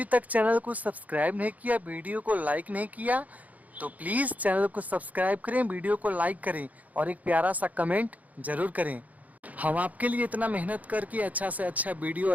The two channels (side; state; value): left; late; 0.076 ms